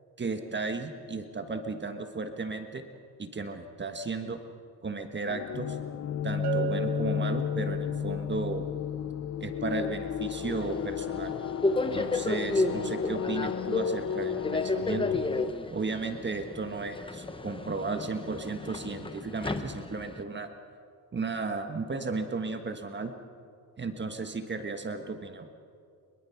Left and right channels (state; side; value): normal; both; correlation 0.40